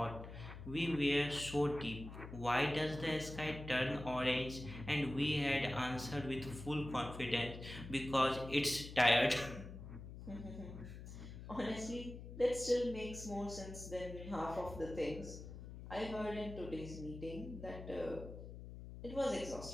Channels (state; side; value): noise; left; hum, 11 dB below the sound